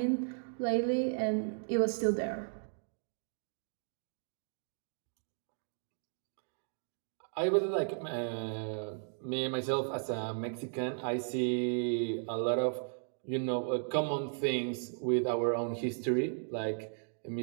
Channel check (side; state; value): left; silent; digital silence